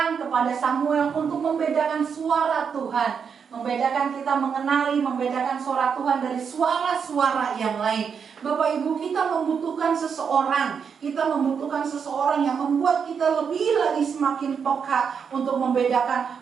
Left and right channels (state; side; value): quieter; left; 6.6 dB